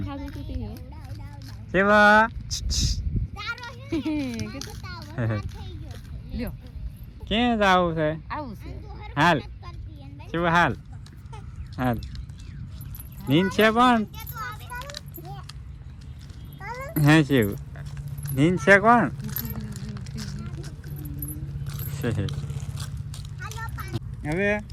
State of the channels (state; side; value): identical; both; correlation 1.00